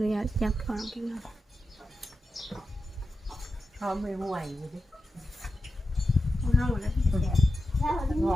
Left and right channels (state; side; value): normal; both; correlation 0.91